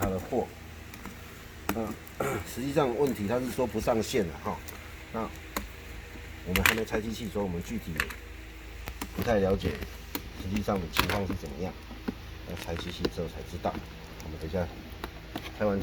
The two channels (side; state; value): both; identical; correlation 1.00